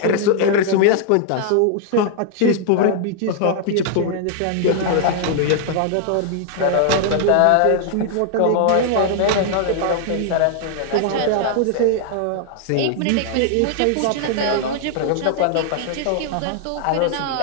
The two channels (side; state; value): both; different; correlation 0.00